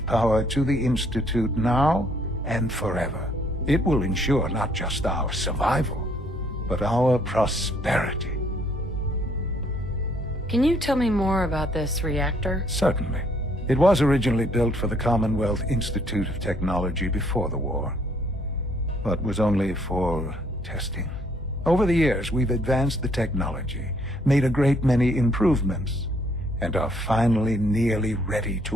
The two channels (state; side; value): normal; both; correlation 0.66